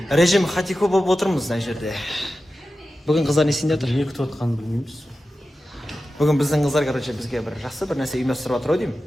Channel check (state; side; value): normal; both; correlation 0.93